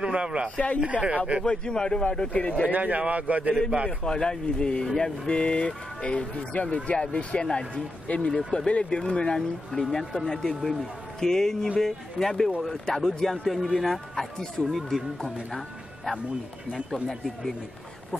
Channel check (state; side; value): normal; both; correlation 0.88